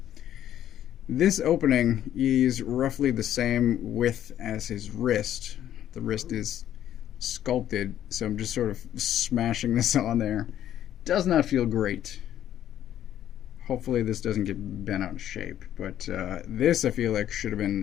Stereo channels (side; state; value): right; quieter; 11.3 dB